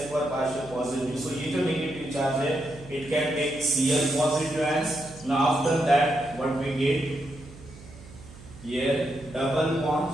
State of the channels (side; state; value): right; noise; hum, 18 dB below the sound